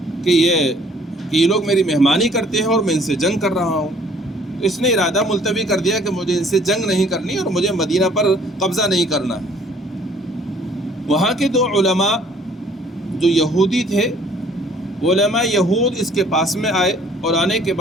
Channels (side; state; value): both; normal; correlation 0.57